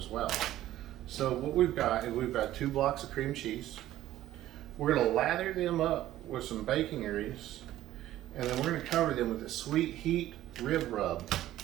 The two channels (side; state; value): left; quieter; 13.9 dB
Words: well. So what we've got is we've got 2 blocks of cream cheese. We're going to lather them up with some bacon grease, and then we're going to cover them with a sweet heat rib rub.